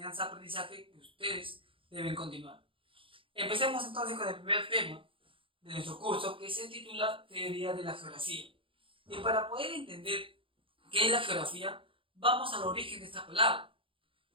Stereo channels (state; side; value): late; left; 0.25 ms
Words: que ustedes deben continuar. Empecemos entonces con el primer tema de nuestro curso, que se titula Teoría de la Geografía. Y para poder entender qué es la geografía, vamos al origen de esta palabra,